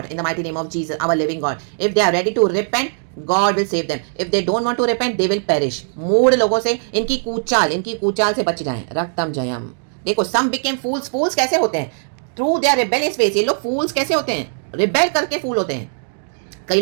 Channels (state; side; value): silent; left; digital silence